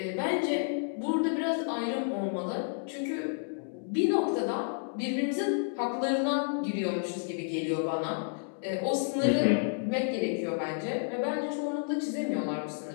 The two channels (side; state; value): right; silent; digital silence